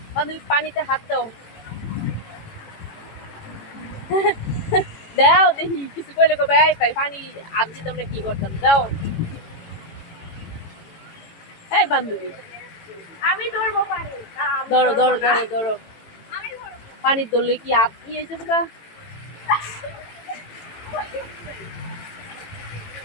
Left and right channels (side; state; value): right; late; 18 ms